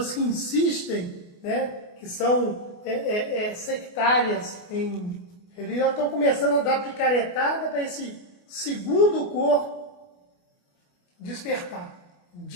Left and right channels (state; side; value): late; right; 28 ms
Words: que insistem, né, que são sectárias em religião, estão começando a dar picaretada para esse segundo corpo despertar.